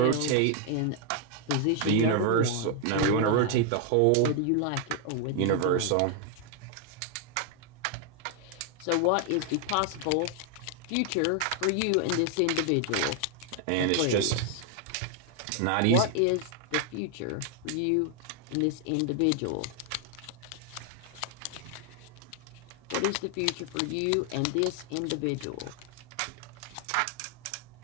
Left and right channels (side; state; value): both; different; correlation 0.00